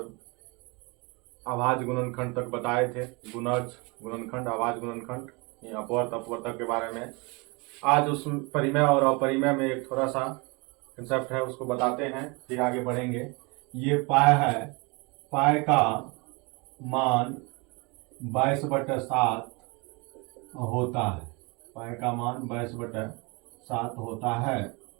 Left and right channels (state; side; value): quieter; left; 28.9 dB